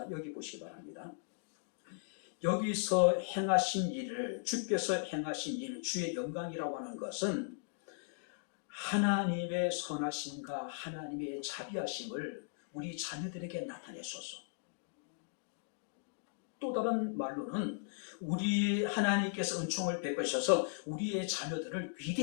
여기 보시기 바랍니다. 여기서 행하신 일을, 주께서 행하신 일, 주의 영광이라고 하는 것은 하나님의 선하심과 하나님의 자비하심을 우리 자녀들에게 나타내소서. 또 다른 말로는 우리 하나님께서 은총을 베푸셔서 우리의 자녀들을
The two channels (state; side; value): silent; right; digital silence